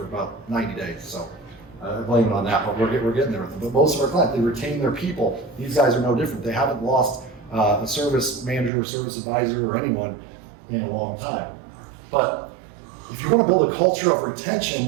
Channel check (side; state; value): left; drops out; at 8.7 s